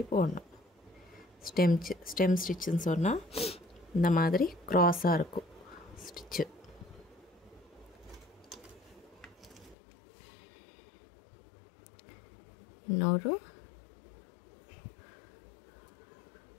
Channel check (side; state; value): right; drops out; at 9.8 s